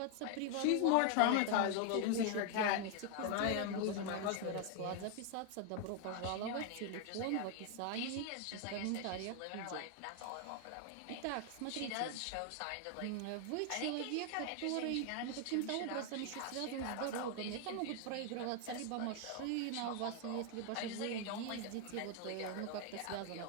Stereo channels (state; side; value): different; both; correlation 0.00